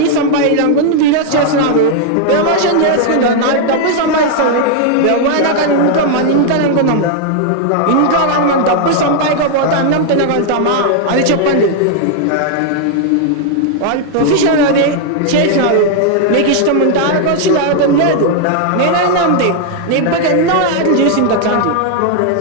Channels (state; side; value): different; both; correlation 0.00